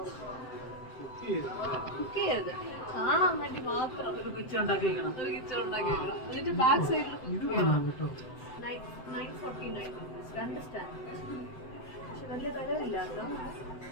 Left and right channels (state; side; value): late; right; 7.8 ms